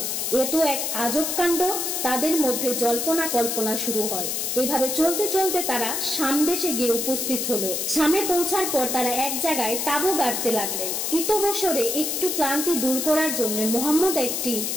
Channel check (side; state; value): left; noise; hiss, 1 dB below the sound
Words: এ তো এক আজব কাণ্ড। তাদের মধ্যে জল্পনা কল্পনা শুরু হয়। এভাবে চলতে চলতে তারা শাম দেশে গিয়ে উপস্থিত হলো। শামে পৌঁছার পর তারা এক জায়গায় তাঁবু গাড়তে লাগলেন। ইতবসরে একটু ক্লান্তি দূর করার জন্য মুহাম্মদ একটি